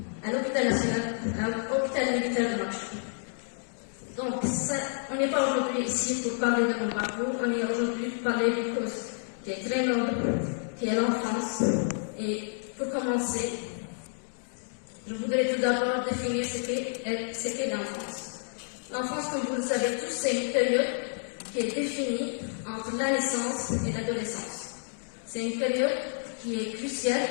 à l'hôpital national, à l'hôpital militaire de Nouakchott. Donc, on n'est pas aujourd'hui ici pour parler de mon parcours, on est aujourd'hui pour parler d'une cause qui est très noble, qui est l'enfance. Et pour commencer, je voudrais tout d'abord définir ce qu'est l'enfance. L'enfance, comme vous le savez tous, c'est une période qui est définie entre la naissance et l'adolescence. C'est une période qui est cruciale,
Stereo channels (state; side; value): silent; right; digital silence